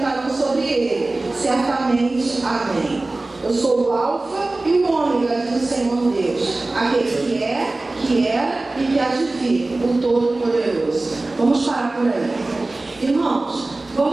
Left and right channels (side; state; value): left; quieter; 3.0 dB